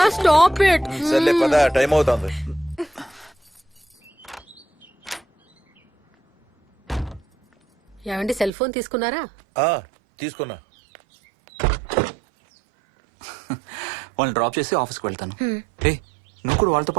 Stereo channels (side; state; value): left; drops out; at 8.5 s